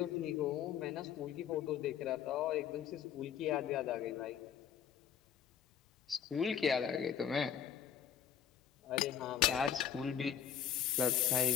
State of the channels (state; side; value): quieter; right; 8.7 dB